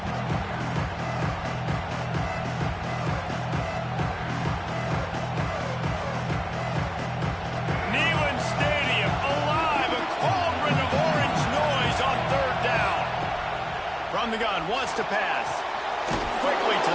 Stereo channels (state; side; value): identical; both; correlation 1.00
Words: From the gun, wants to pass. Quickly to